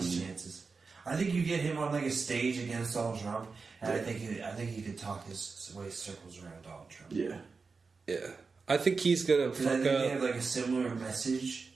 chances. I think you get him on like a stage against Donald Trump, and I think he could talk his way circles around Donald Trump. Yeah. Yeah. I think he's gonna fuck I think up. they have like a similar message.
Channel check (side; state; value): left; quieter; 4.6 dB